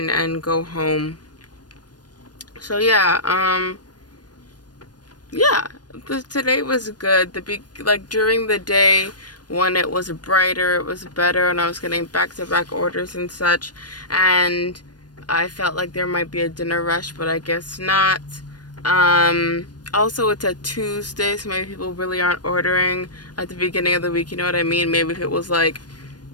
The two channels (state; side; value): late; right; 0.69 ms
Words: and go home. So yeah, yeah, today was good. Like during the day when it was brighter, it was better, and I was getting back-to-back orders and such, and I felt like there might be a dinner rush, but I guess not. Also, it's a Tuesday, so maybe people really aren't ordering at the beginning of the week, you know what I mean? Maybe if it was like